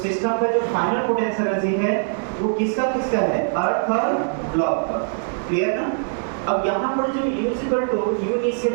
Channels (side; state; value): left; silent; digital silence